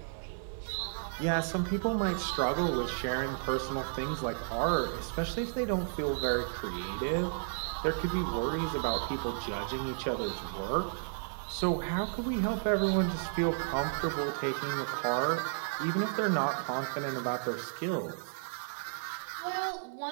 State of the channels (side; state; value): left; silent; 56 dB below the other